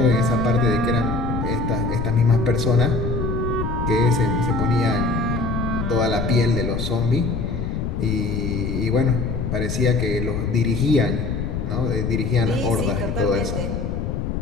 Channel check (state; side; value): noise; left; rumble, 2 dB below the sound